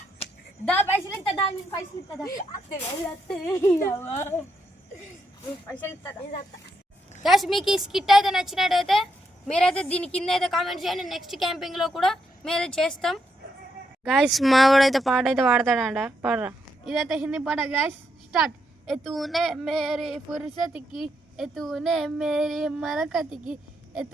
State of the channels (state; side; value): normal; both; correlation 0.79